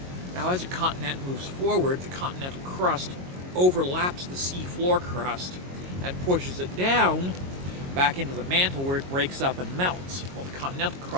Now, as a continent moves forward, the continental crust overlaps the seafloor crust and pushes it down back into the mantle where it breaks up and melts. Well, the continental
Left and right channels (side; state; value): left; late; 22 ms